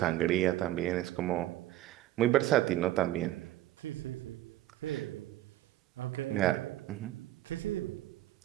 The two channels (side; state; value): left; quieter; 14.6 dB